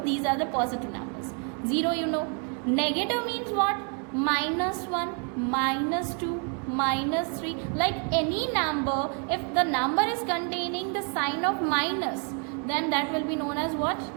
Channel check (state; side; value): quieter; left; 39.3 dB